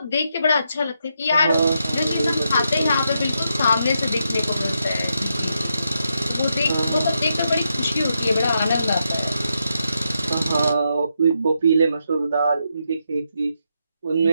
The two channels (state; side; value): inverted; both; correlation -0.82